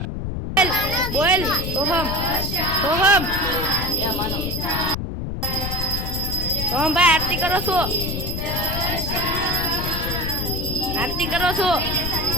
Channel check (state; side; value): noise; left; rumble, 4 dB below the sound